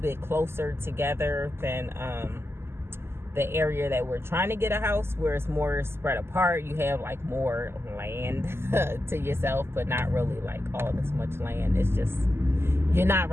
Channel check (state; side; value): late; left; 0.12 ms